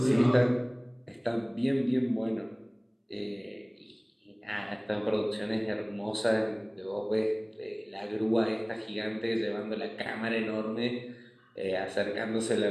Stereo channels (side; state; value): both; identical; correlation 1.00